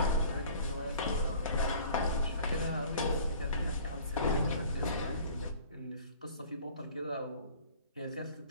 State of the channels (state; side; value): inverted; both; correlation -0.49